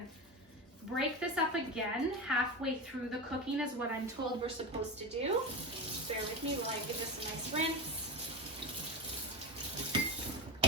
break this up again halfway through the cooking is what I'm told we're supposed to do. Bear with me while I give this a nice rinse.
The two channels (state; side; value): normal; both; correlation 0.22